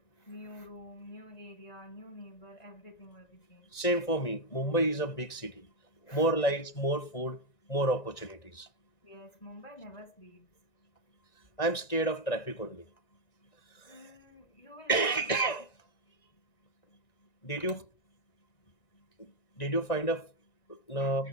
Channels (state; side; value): late; right; 1.9 ms